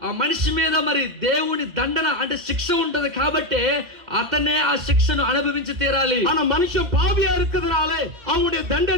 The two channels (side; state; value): left; late; 2.1 ms